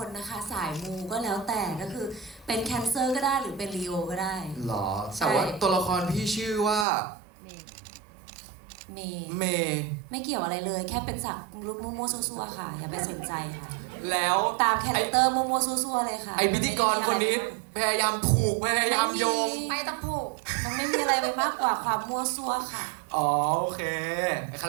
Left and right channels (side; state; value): left; drops out; at 6.9 s